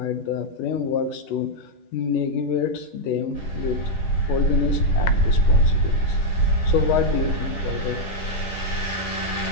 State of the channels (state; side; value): late; right; 10 ms